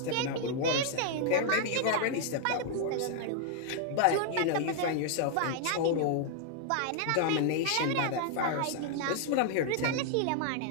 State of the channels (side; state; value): both; different; correlation -0.01